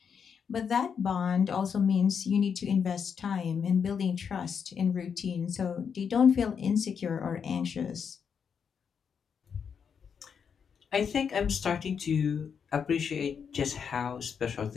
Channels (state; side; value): quieter; right; 6.8 dB